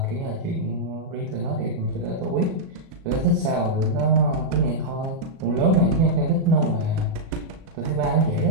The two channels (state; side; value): late; left; 37 ms